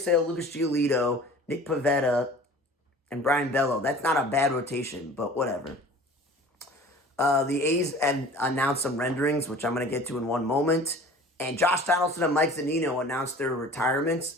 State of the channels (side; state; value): both; normal; correlation 0.44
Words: Sale, Lucas Giolito, Nick Pivetta, and Brian Bello. That's not a bad rotation, but whatever. The A's announced some renderings, which I'm going to get to in one moment. And Josh Donaldson and Mike Zunino announced their retirements.